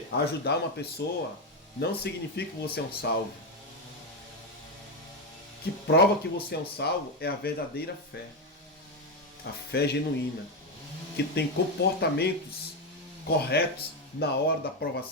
ajudar uma pessoa não significa que você é um salvo. O que prova que você é um salvo é a verdadeira fé. A fé genuína, que tem comportamentos corretos na hora da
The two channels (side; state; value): both; normal; correlation 0.08